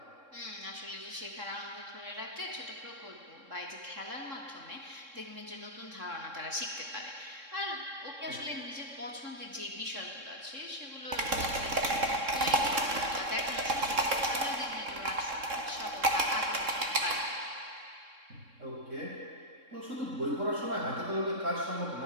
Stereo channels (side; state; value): left; late; 3.7 ms